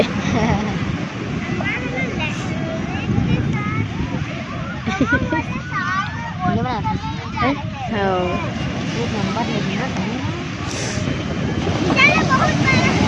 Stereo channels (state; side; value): identical; both; correlation 1.00